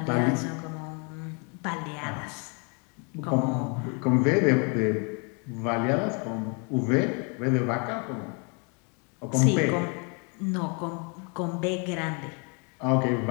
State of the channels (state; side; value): quieter; right; 35.6 dB